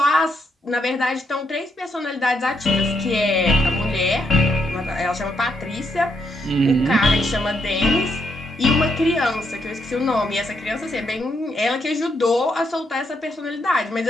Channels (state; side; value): normal; both; correlation 0.77